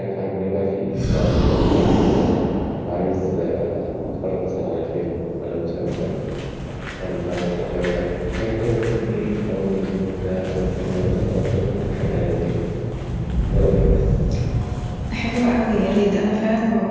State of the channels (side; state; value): both; identical; correlation 1.00